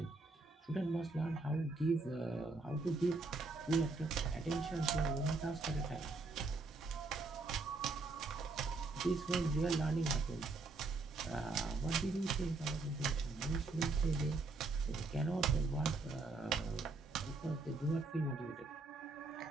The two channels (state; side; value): quieter; left; 3.7 dB